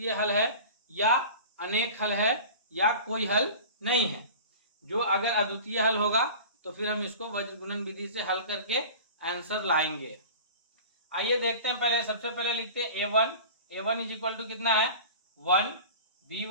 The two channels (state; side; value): inverted; both; correlation -0.38